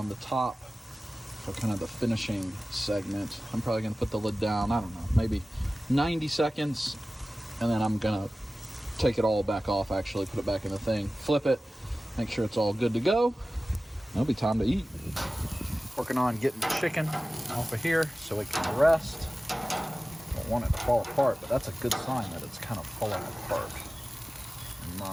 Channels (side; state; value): both; normal; correlation 0.96